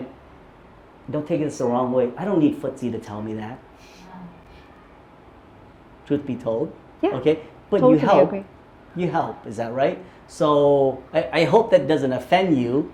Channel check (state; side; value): identical; both; correlation 1.00